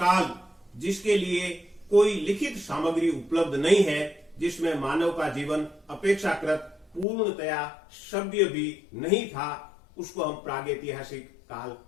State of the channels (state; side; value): drops out; right; at 7.1 s